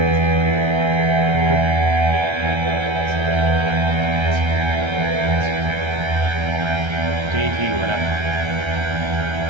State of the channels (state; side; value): late; left; 1.3 ms